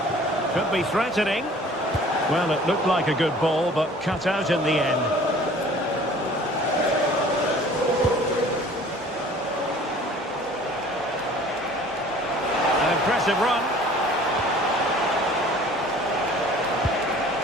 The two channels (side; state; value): both; normal; correlation 0.49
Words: Could be threatening. Well, it looked like a good ball, but cut out in the end. Impressive run.